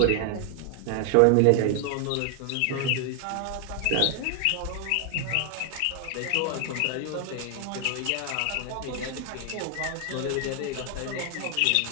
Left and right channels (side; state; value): both; different; correlation 0.00